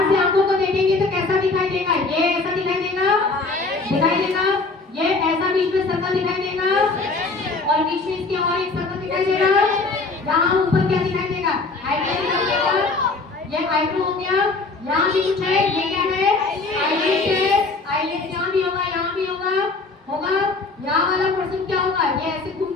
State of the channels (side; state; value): right; quieter; 3.7 dB